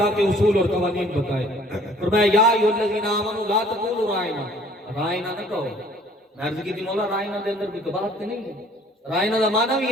کے اصول اور قوانین بتائے۔ فرمایا یا ایھا الذین آمنوا لا تقولوا رائنا، رائنا نہ کہو۔ میں عرض کی تھی مولا رائنا دے اندر بھی کباہت نہیں ہے، رائنا دا معنی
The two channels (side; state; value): both; normal; correlation 0.56